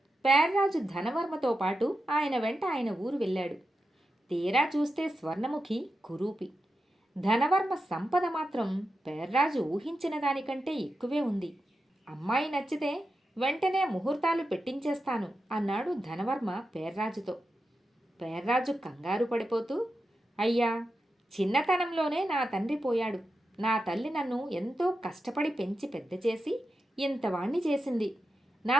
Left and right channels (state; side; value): normal; both; correlation 0.89